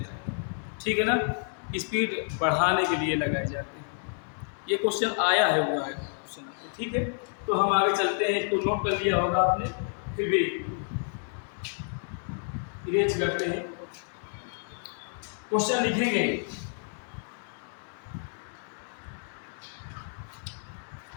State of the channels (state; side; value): silent; right; 58 dB below the other